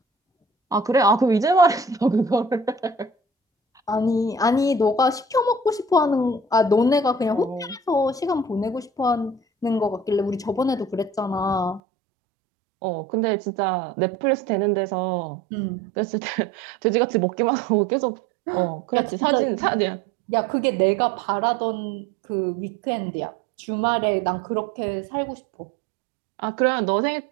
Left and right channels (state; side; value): drops out; left; at 11.8 s